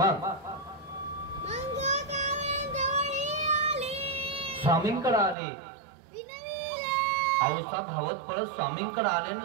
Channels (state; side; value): drops out; left; at 5.4 s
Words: स्वामींकडे आले. औसा धावत पळत स्वामींकडे आले